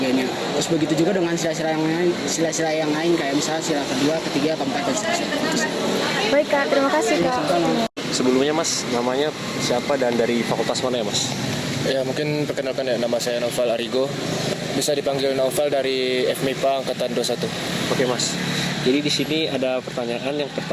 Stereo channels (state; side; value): identical; both; correlation 1.00